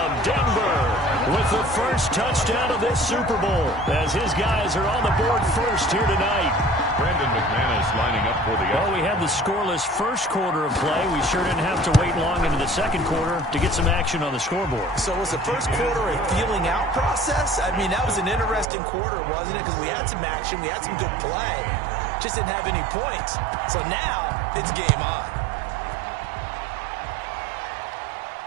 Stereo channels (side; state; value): left; drops out; at 18.7 s